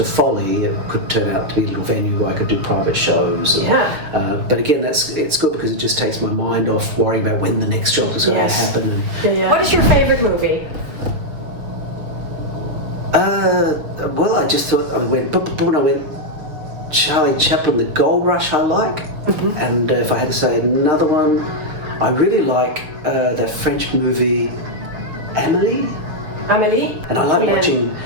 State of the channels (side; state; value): left; late; 6.5 ms